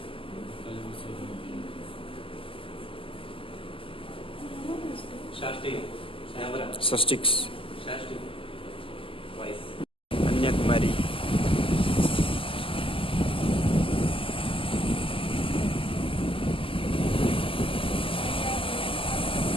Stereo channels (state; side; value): late; right; 0.26 ms